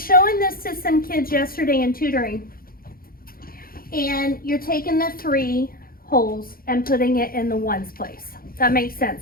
this to some kids yesterday in tutoring, and you're taking the 3 wholes and putting it in the ones place. That makes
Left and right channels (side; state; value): right; late; 0.42 ms